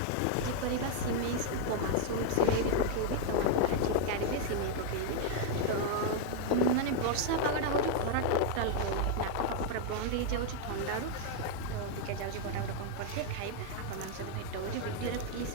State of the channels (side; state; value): both; different; correlation 0.00